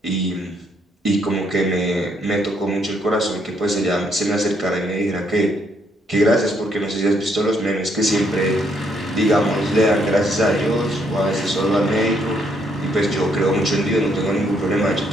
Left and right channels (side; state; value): both; normal; correlation 0.72